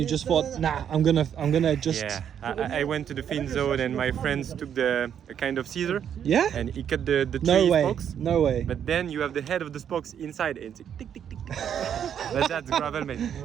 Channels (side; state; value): left; quieter; 8.8 dB